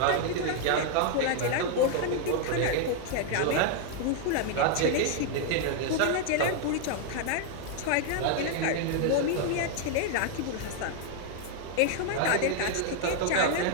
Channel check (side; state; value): both; different; correlation 0.00